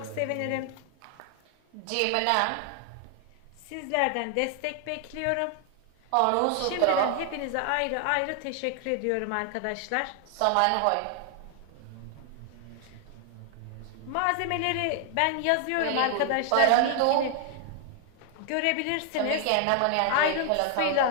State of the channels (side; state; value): both; different; correlation 0.00